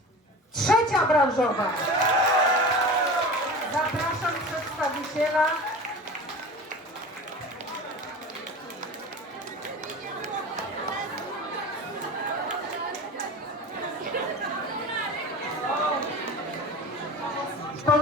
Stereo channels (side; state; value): both; normal; correlation 0.34